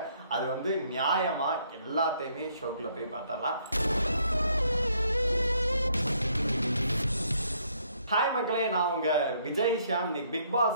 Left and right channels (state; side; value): inverted; both; correlation -0.68